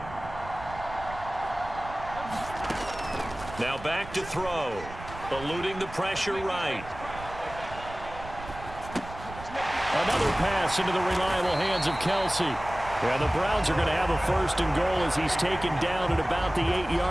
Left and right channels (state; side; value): noise; right; rumble, 14 dB below the sound